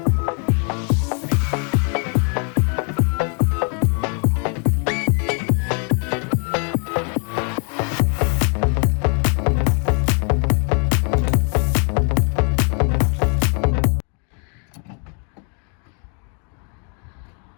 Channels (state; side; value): quieter; right; 39.7 dB